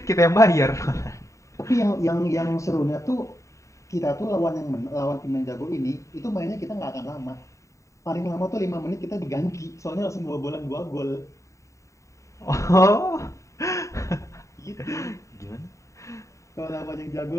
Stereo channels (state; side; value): late; right; 0.15 ms